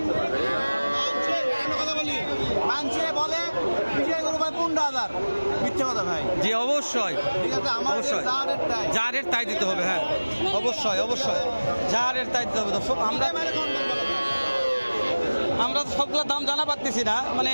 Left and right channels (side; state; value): both; inverted; correlation -1.00